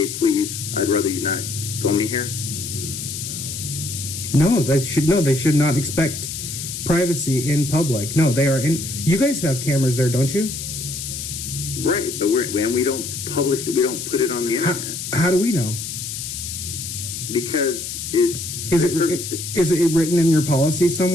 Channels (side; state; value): left; noise; hiss, 6 dB below the sound